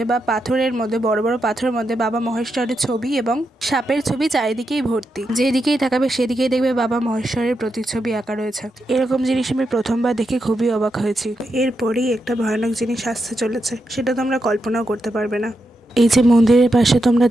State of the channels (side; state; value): both; normal; correlation 0.85